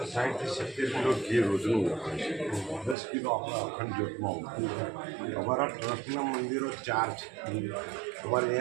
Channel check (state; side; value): drops out; left; at 3.0 s